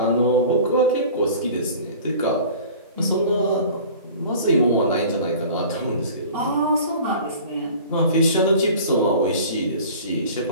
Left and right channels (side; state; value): both; inverted; correlation -0.43